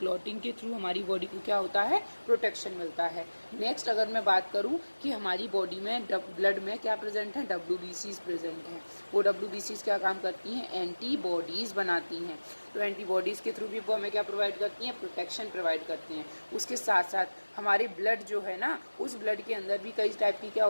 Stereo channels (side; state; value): both; inverted; correlation -1.00